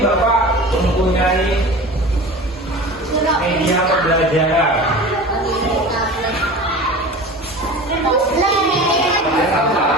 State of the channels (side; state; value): both; normal; correlation 0.36